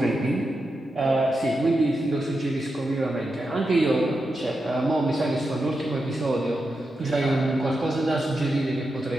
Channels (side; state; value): both; normal; correlation 0.88